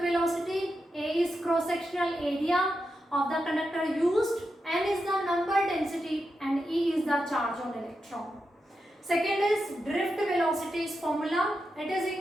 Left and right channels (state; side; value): normal; both; correlation 0.87